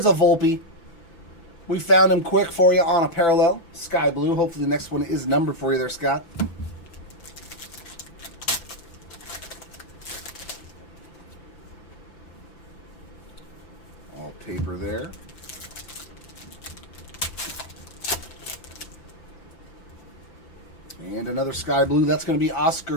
a Volpe. We found him quick for you on a parallel. Sky blue. Hopefully the next one is numbered for you there, Scott. All paper there. And another sky blue. That's going to be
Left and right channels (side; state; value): right; late; 5.9 ms